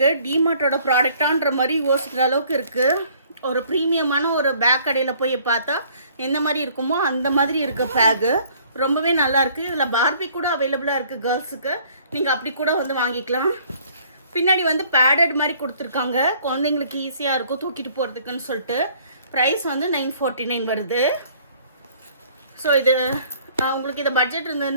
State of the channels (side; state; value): both; inverted; correlation -0.58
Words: டிமார்ட்டோட ப்ராடக்டான்ற மாதிரி யோசிக்கிற அளவுக்கு இருக்குது. ஒரு ப்ரீமியமான ஒரு பேக் கடையில் போய் பார்த்தா எந்த மாதிரி இருக்குமோ அந்த மாதிரி இருக்க பேக்கு ரொம்பவே நல்லாயிருக்கு. இதில் பார்பி கூட அவைலபிளாக இருக்குது கேர்ள்ஸுக்கு. நீங்கள் அப்படி கூட வந்து வாங்கிக்கலாம். பின்னாடி வந்து பேடட் மாதிரி கொடுத்துருக்காங்க. குழந்தைங்களுக்கு ஈஸியாக இருக்கும் தூக்கிட்டு போகிறதுக்குன்னு சொல்லிட்டு. ப்ரைஸ் வந்து 949 வருது. ஸோ இது உங்களுக்கு இந்த பட்ஜெட்